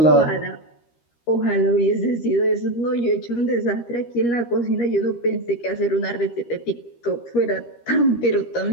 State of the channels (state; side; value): late; right; 13 ms